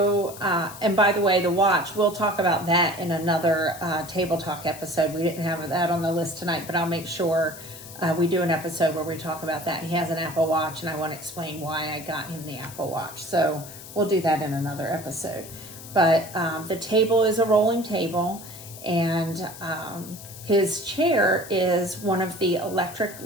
and by the way, the watch, we'll talk about that in another Table Talk episode. We didn't have that on the list tonight, but I'll make sure we do an episode where we talk about that. He has an Apple Watch, and I want to explain why I got him the Apple Watch. So we'll do that in another episode. But the table is a rolling table, and his chair is one of the electric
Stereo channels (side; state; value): left; noise; hiss, 15 dB below the sound